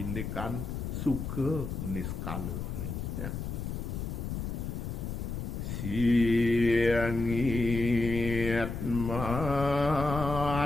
suka niskalene ya. Siangit matera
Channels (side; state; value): left; noise; rumble, 4 dB below the sound